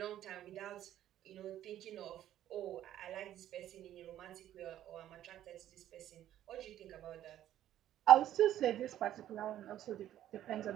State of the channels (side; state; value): left; quieter; 12.2 dB